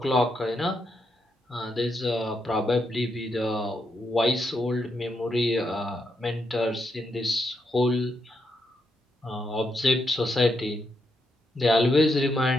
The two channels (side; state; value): both; normal; correlation 0.81